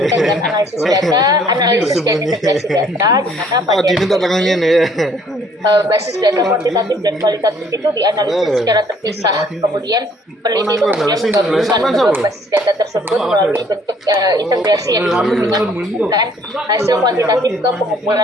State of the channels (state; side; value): normal; both; correlation 0.61